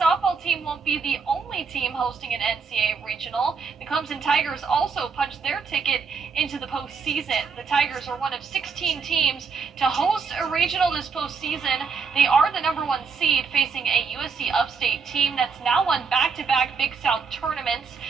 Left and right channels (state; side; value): quieter; left; 5.3 dB